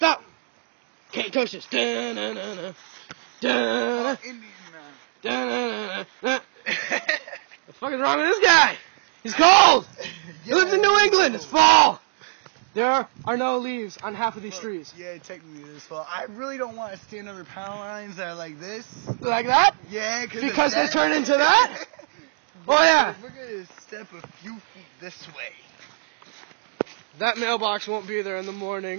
Can't touch this. Da-na-na-na. Da-na. Da-na-na-na. The fuck is wrong with this guy? He's cold. He lives in New England. It's fall. There are no leaves on half of these trees. Yeah, technically it is fall. I really don't want to stand under power lines that are like this. Like that? Yeah, because they turn into that? Oh yeah. We're going to step a few feet this way. That mailbox won't be there in the morning.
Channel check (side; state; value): left; quieter; 39.0 dB